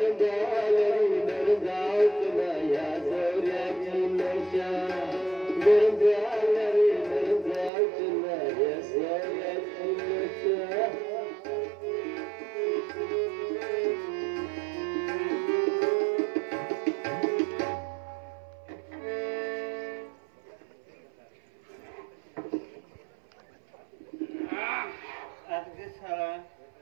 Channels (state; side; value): drops out; left; at 7.7 s